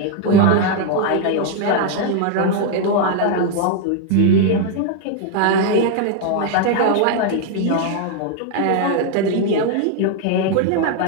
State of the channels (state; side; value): different; both; correlation 0.00